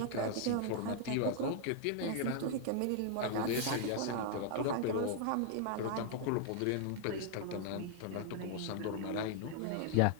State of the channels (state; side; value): different; both; correlation 0.00